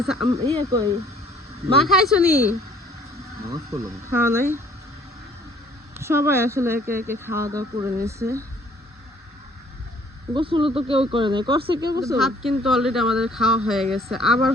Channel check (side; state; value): both; normal; correlation 0.58